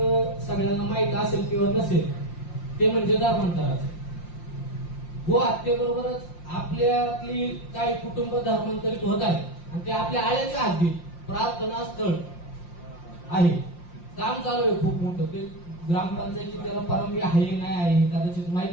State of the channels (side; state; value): right; late; 5.7 ms